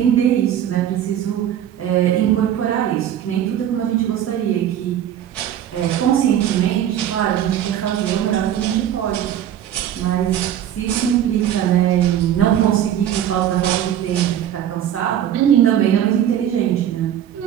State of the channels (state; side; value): quieter; left; 10.6 dB